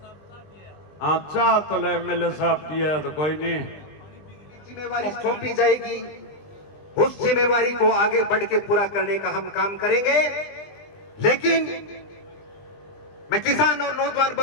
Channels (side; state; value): right; late; 20 ms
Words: हाँ चाह तो ले एमएलए साहब दिए तो कोई नहीं। जिम्मेवारी सौंपी जाएगी, उस जिम्मेवारी को आगे बढ़ के पूरा करने का हम काम करेंगे। लेकिन मैं किसान और नौजवान